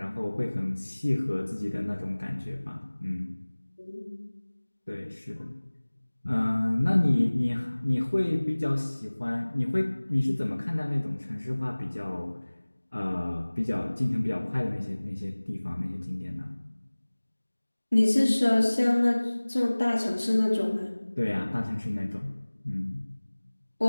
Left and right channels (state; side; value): inverted; both; correlation -1.00